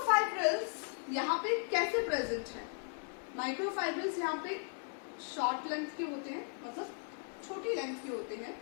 यहाँ पे कैसे प्रेजेंट है, माइक्रोफाइब्रिल्स यहाँ पे शॉर्ट लेंथ के होते हैं, मतलब छोटी लेंथ के होते हैं,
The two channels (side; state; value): right; silent; 53 dB below the other